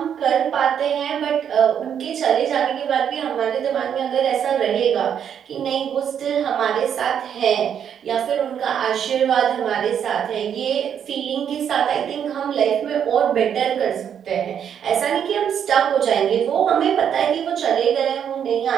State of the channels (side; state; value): left; quieter; 8.5 dB